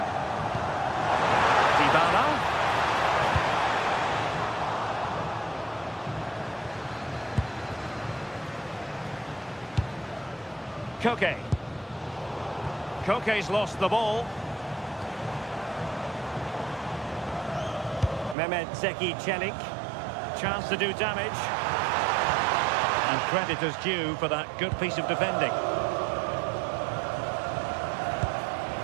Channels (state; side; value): drops out; left; at 18.4 s